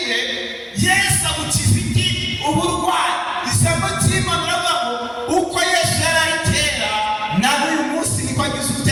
Yesu agukiza iki? Uburwayi. Ijambo ry'Imana riravuga uko Yesu yari ari kera, nawe uyu munsi niko agize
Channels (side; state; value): both; identical; correlation 1.00